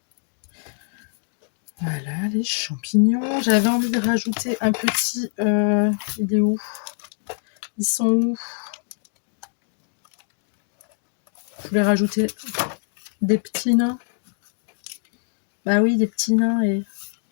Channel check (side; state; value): right; silent; 60 dB below the other